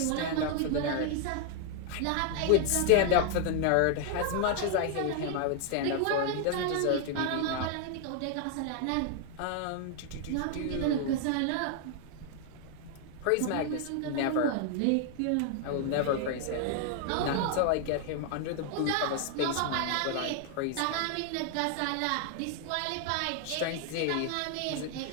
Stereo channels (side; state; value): both; different; correlation 0.00